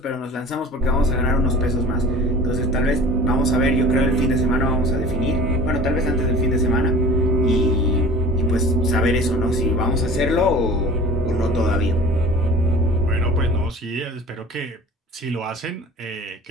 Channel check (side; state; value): both; normal; correlation 0.42